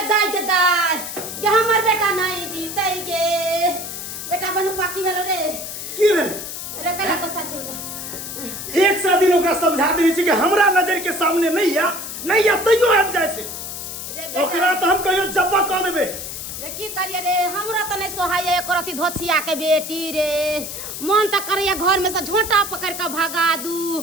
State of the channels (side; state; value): left; noise; hiss, 8 dB below the sound